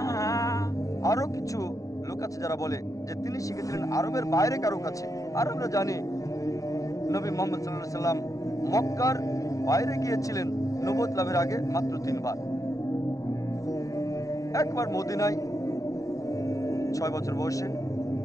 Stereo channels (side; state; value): right; late; 0.16 ms